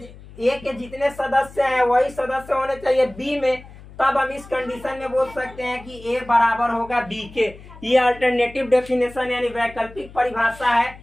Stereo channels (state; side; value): noise; left; hum, 19 dB below the sound